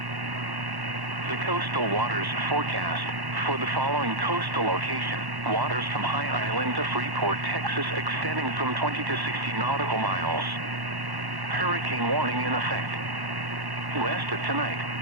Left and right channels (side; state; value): left; late; 1.1 ms